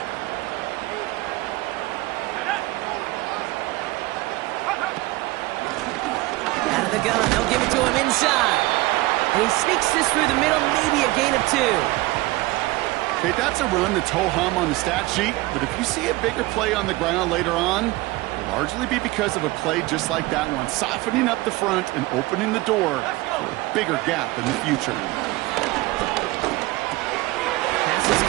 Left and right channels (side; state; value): left; quieter; 20.2 dB